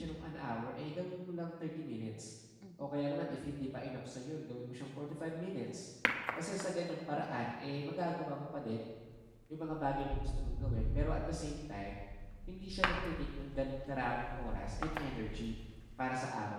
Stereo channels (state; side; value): identical; both; correlation 1.00